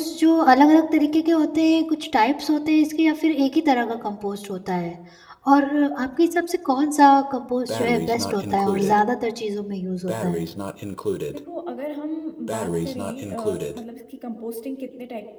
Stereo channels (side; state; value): both; identical; correlation 1.00